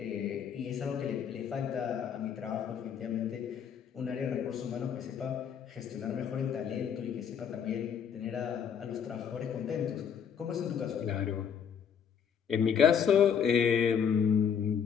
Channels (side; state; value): right; quieter; 7.6 dB